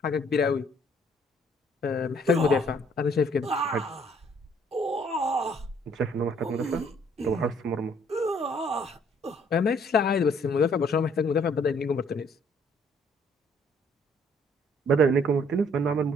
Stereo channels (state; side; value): normal; both; correlation 0.63